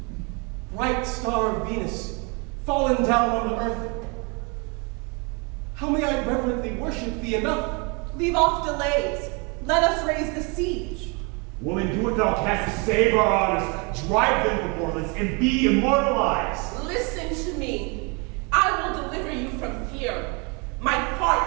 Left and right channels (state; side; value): quieter; left; 31.7 dB